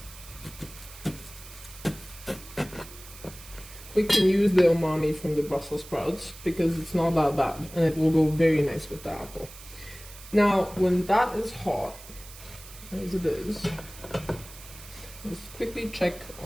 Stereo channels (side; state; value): right; noise; hiss, 17 dB below the sound